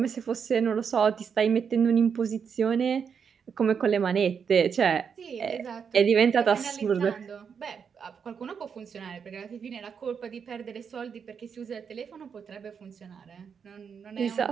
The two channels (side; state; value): left; quieter; 6.7 dB